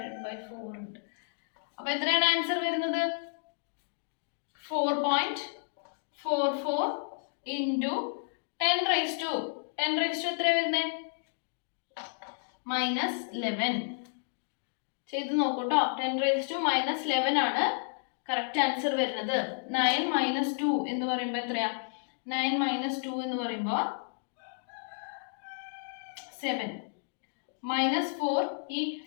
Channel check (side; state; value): right; silent; digital silence